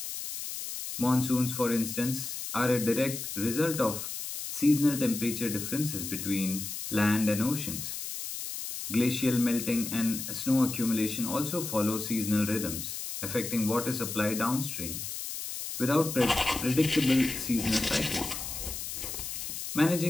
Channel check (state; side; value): noise; left; hiss, 6 dB below the sound